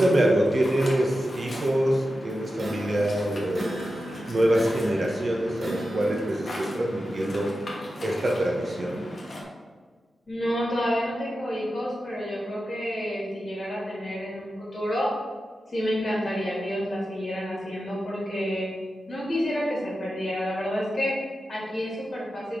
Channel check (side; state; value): both; normal; correlation 0.91